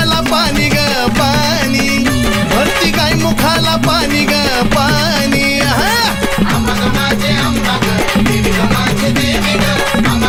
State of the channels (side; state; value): both; identical; correlation 1.00